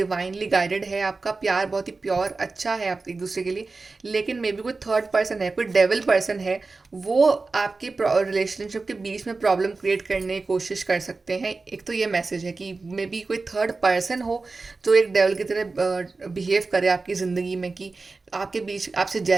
गाइडेड है, आपका प्यार बहुत ही प्योर अच्छा है आप एक दूसरे के लिए। लेकिन मे बी कोई थर्ड पर्सन है, कोई डेविल पर्सन है, वो आपके रिलेशनशिप के बीच में प्रॉब्लम क्रिएट करने की कोशिश कर सकते हैं। एक तो ये मैसेज है कि मे बी कोई थर्ड पर्सन हो जो एक डेविल की तरह बिहेव करे आपकी ज़िंदगी में, कि आपके बीच आपसे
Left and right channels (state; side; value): quieter; left; 3.8 dB